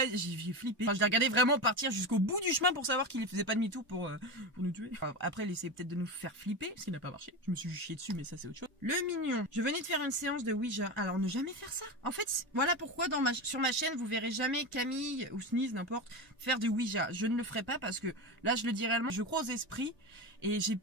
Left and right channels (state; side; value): normal; both; correlation 0.21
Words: flippé. Enfin, je l'ai regardé vraiment partir jusqu'au bout du chemin pour savoir qu'il faisait pas demi-tour pour nous tuer. Enfin, après, il essayait peut-être de nous faire flipper, ce qui n'a pas marché. Je me suis chié dessus, mais ça c'est autre chose. Le mignon. Je venais de faire une séance de Ouija. Alors, ne jamais faire ça. En fait, voilà pourquoi sur ma chaîne, vous verrez jamais Camille ou Sneeze, n'importe, faire de Ouija. Je ne le ferai pas parce que là, je le dis réellement, je crois aux esprits et j'ai